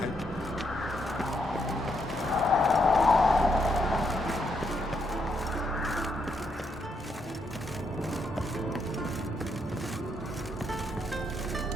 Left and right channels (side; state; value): both; normal; correlation 0.77